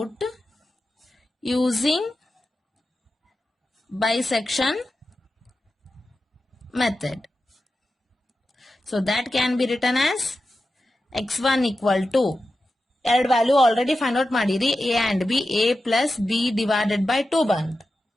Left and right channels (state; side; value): normal; both; correlation 0.91